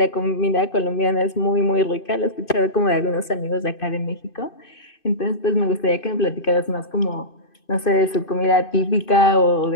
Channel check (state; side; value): late; right; 2.5 ms